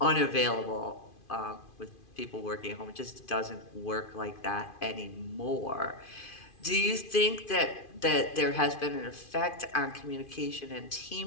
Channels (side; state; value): right; late; 2.5 ms